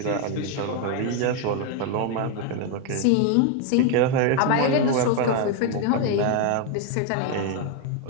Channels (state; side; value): different; both; correlation 0.01